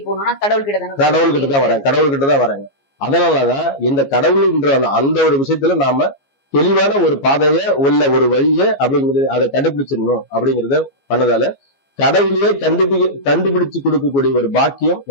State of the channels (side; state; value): right; late; 15 ms